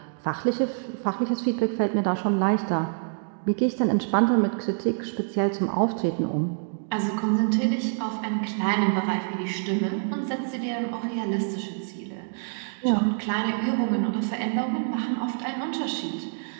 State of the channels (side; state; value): left; silent; digital silence